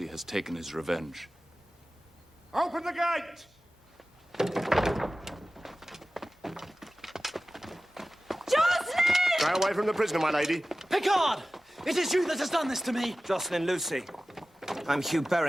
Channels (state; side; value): normal; both; correlation 0.96